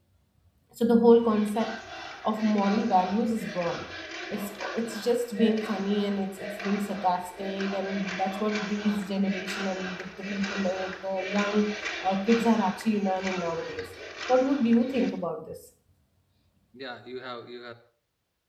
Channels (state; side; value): identical; both; correlation 1.00